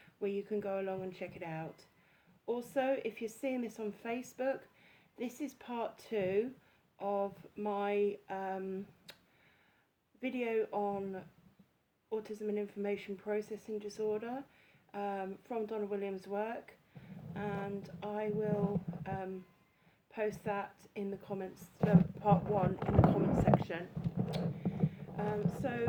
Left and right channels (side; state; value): both; identical; correlation 1.00